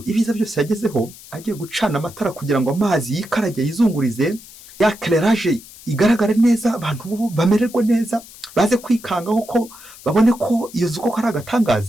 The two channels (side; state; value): left; noise; hiss, 19 dB below the sound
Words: ibiza byose yagezeho, agiye gucana amatara kugira ngo amazi yikarage yizungurize, ya clairage igaragare neza, abantu bo bamererwe neza, baze kwikangaho ko babone ko iyo nzu koko ari